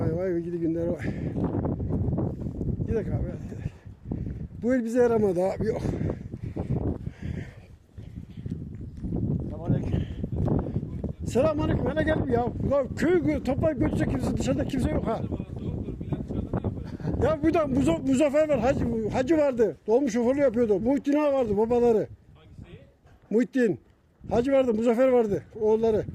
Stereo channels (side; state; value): both; identical; correlation 1.00